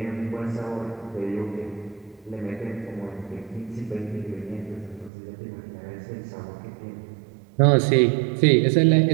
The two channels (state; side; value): drops out; left; at 5.1 s